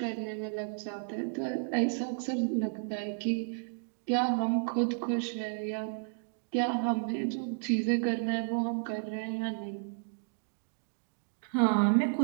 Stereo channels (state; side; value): silent; left; digital silence